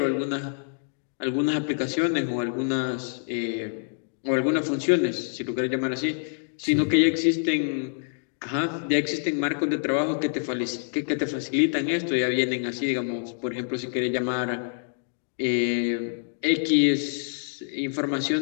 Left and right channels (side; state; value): right; silent; digital silence